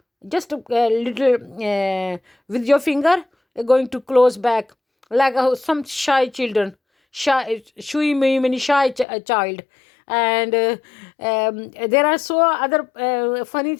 just a little with your finger, going to close back, like some shy children, shui many shy child. And there are so other funny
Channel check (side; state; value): right; drops out; at 9.1 s